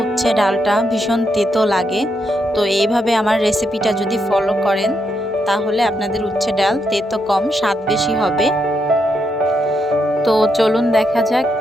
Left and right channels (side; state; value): both; normal; correlation 0.80